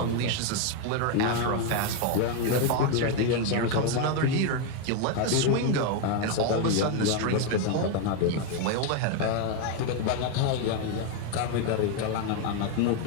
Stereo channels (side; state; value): both; different; correlation 0.01